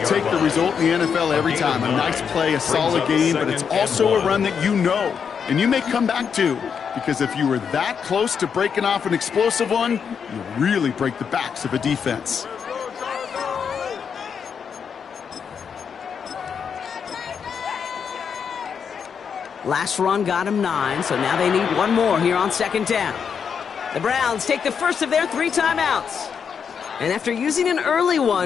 the result in the NFL every time. A nice play, a solid game, but it's also a run that you know and you may come back to, because if you were that close to breaking off an explosive one, you really break the backs of a defense. Last run got him 9, so now they need one more here on 2nd down. The Browns take the first of their 3 timeouts. And after using an early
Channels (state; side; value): quieter; right; 6.8 dB